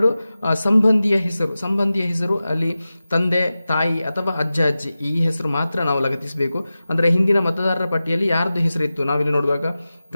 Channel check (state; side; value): inverted; both; correlation -0.95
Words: ಸಂಬಂಧಿಯ ಹೆಸರು. ಸಂಬಂಧಿಯ ಹೆಸರು ಅಲ್ಲಿ ತಂದೆ, ತಾಯಿ ಅಥವಾ ಅಜ್ಜ ಅಜ್ಜಿ ಈ ಹೆಸರು ಮಾತ್ರ ನಾವು ಲಗತ್ತಿಸಬೇಕು. ಅಂದ್ರೆ ಹಿಂದಿನ ಮತದಾರರ ಪಟ್ಟಿಯಲ್ಲಿ ಯಾರ್ದು ಹೆಸರಿತ್ತು ನಾವಿಲ್ಲಿ ನೋಡುವಾಗ